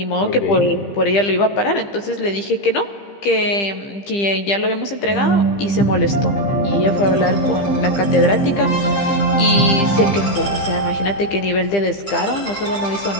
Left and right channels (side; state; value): right; late; 15 ms